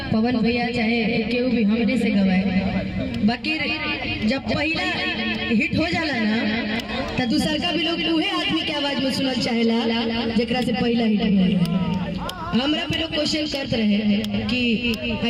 पवन भैया चाहे केहू भी हमरे से गवाए, बाकी जब पहला हिट हो जाला ना तो दूसर का भी लोग उहे आदमी के आवाज में सुनल चाहेला जेकरा से पहला हिट हो। हमरा पे लोग क्वेश्चन करते रहे कि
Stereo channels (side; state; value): both; identical; correlation 1.00